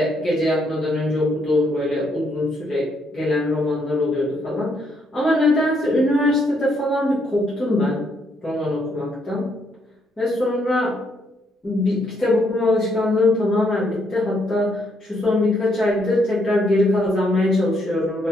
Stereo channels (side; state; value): both; normal; correlation 0.73